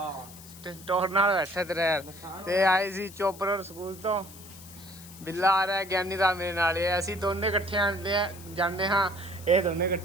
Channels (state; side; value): noise; left; hiss, 18 dB below the sound